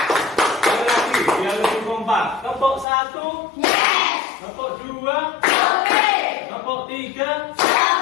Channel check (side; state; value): right; drops out; at 2.9 s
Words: Sekali lagi, biar lebih kompak. Kelompok 1, kelompok 2, kelompok 3,